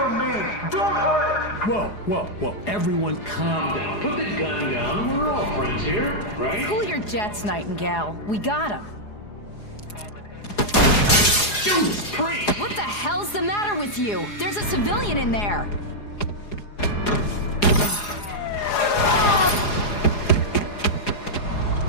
me. Don't hurt. Whoa. Everyone calm down. Put the gun down. We're all friends here, right? Cool your jets, Nightingale. We got him. Judas Priest! What the hell's the matter with you? There's a civilian in there.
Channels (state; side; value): late; right; 4.8 ms